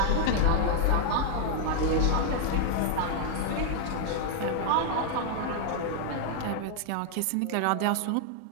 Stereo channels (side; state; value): both; different; correlation 0.00